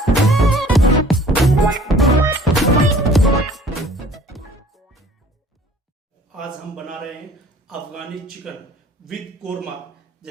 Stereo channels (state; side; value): normal; both; correlation 0.52